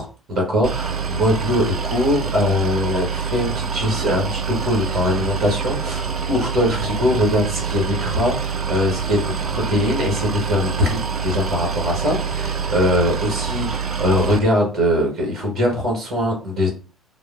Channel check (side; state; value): both; normal; correlation 0.35